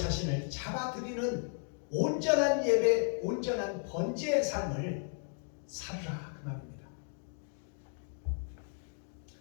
잡아들이는 온전한 예배, 온전한 번제의 삶을 살으라 그 말입니다.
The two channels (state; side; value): silent; right; 55 dB below the other